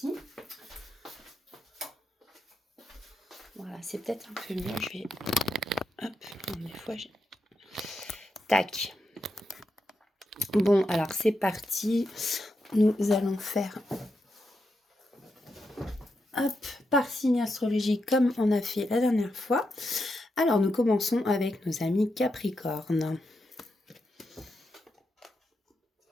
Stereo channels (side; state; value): both; normal; correlation 0.85